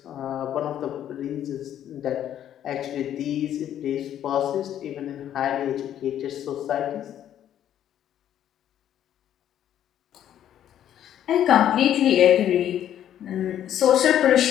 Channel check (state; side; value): quieter; right; 10.7 dB